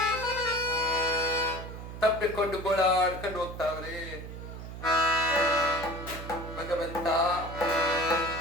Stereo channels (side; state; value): right; noise; hum, 10 dB below the sound